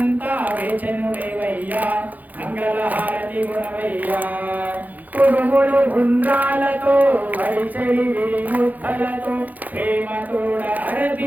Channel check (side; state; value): left; late; 0.081 ms